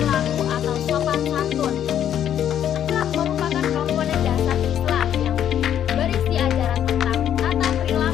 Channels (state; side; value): quieter; right; 10.1 dB